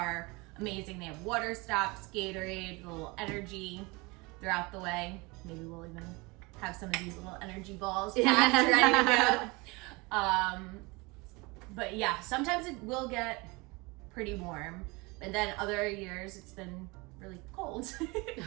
amazing. They have water stops, Gatorade, little energy throughout the way. Maybe we'll even have some of these little energy balls packed, ready to go. But yeah, sometimes it will get pretty warm, and then other years it's been really cold.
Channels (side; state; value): left; quieter; 25.8 dB